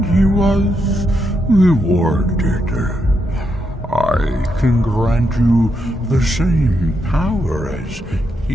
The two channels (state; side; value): normal; both; correlation 0.81